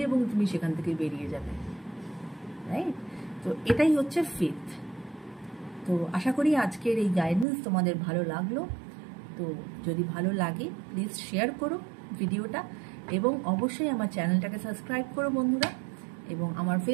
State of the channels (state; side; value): drops out; left; at 7.5 s